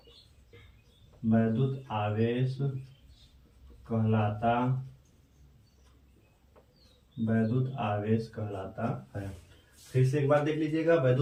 कहलाता है। फिर से एक बार देख लीजिएगा।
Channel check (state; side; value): identical; both; correlation 1.00